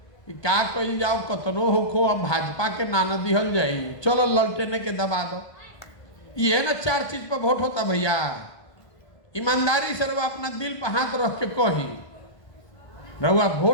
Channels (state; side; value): late; right; 1.2 ms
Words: कि का कही जाओ कतनो होखो, अब भाजपा के नाना दिहल जाई, चलो ललटेने के दबा दो। ये ना 4 चीज पर वोट होता भैया। ईमानदारी से रउआ अपना दिल पर हाथ रख के कही, रउआ